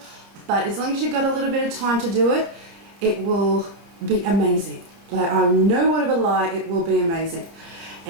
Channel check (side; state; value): left; late; 29 ms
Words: but as long as you've got a little bit of time to do it, it will be amazing. Like, I no word of a lie, it will be amazing.